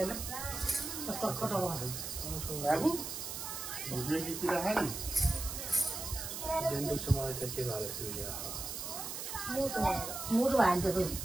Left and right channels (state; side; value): noise; right; hiss, 6 dB below the sound